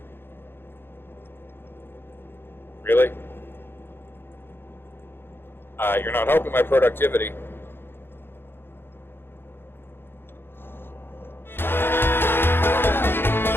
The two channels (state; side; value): late; right; 0.10 ms